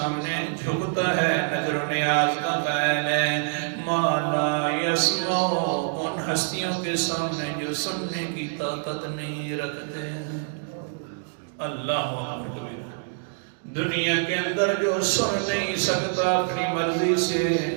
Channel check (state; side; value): silent; left; digital silence